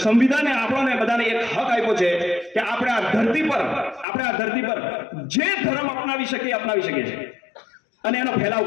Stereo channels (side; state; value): right; drops out; at 4.0 s